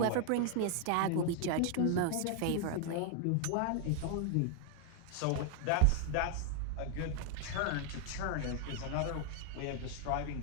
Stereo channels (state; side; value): different; both; correlation 0.00